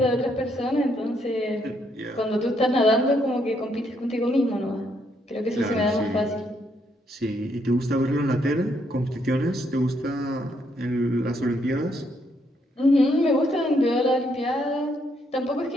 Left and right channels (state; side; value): normal; both; correlation 0.74